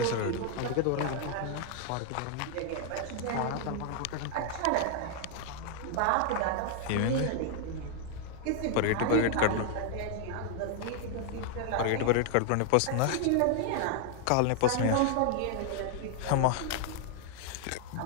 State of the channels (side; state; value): both; different; correlation 0.00